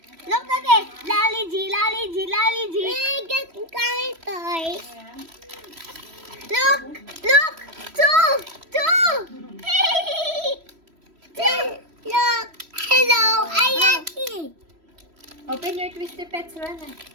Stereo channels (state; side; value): late; left; 3.1 ms